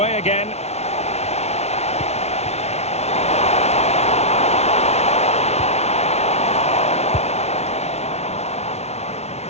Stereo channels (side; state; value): right; late; 0.31 ms